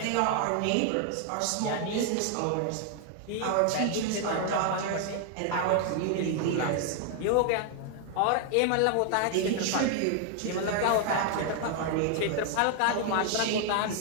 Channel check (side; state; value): both; different; correlation 0.00